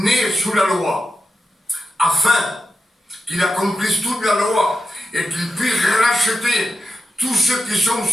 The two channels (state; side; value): normal; both; correlation 0.89